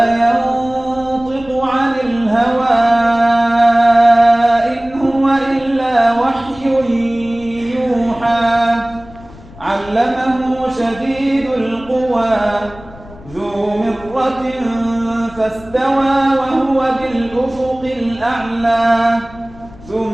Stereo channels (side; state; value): left; noise; rumble, 20 dB below the sound